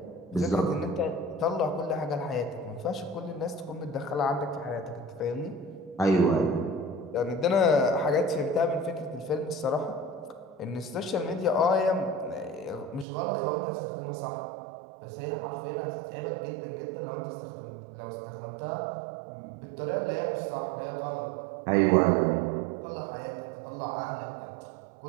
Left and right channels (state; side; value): drops out; left; at 13.1 s